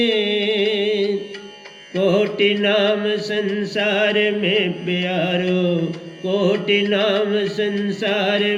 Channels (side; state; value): both; identical; correlation 1.00